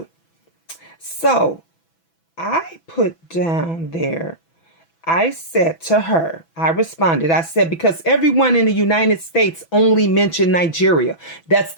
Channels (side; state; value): right; late; 6.0 ms